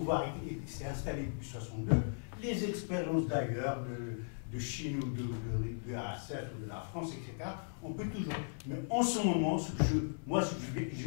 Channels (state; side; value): silent; right; 53 dB below the other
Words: s'est installé depuis 1962, les expériences d'ailleurs, de Chine ou de RSF ou de la France, etc. On peut toujours. Mais en ce moment,